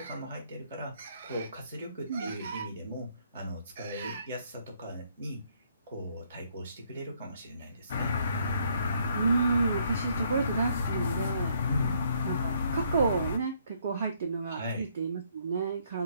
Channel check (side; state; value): both; inverted; correlation -0.68